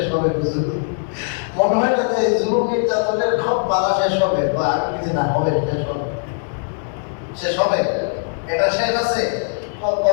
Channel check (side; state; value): right; silent; digital silence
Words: হবে হুজুর? মনে হয় না যে জুলুম নির্যাতনের সব পালা শেষ হবে, বা আর কিছু না হবে, শেষ হবে, শেষ হবে। এটা শেষ আছে,